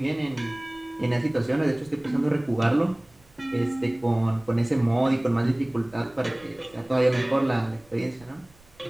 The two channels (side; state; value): right; noise; rumble, 28 dB below the sound